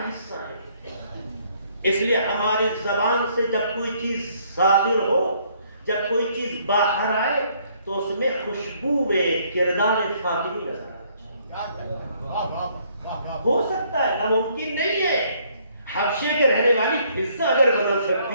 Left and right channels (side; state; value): both; inverted; correlation -0.66